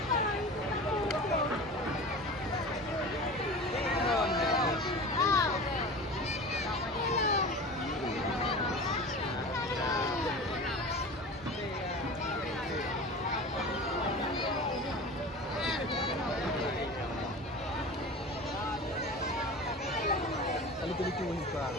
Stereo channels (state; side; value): normal; both; correlation 0.34